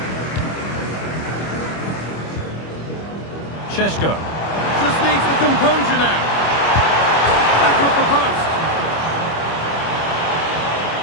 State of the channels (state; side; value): late; right; 25 ms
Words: Šeško. Just needs the composure now. Back up the post.